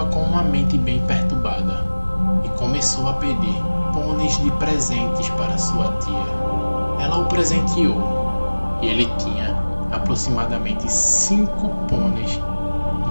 com uma mente bem perturbada e começou a pedir pôneis de presentes para sua tia. Ela o presenteou e ele tinha aproximadamente 5 pôneis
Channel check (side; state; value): both; inverted; correlation -1.00